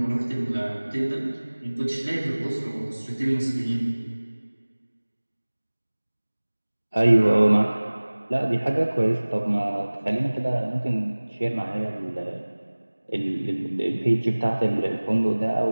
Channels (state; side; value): inverted; both; correlation -1.00